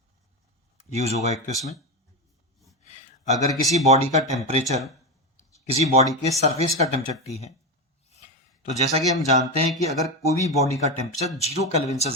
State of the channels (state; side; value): normal; both; correlation 0.15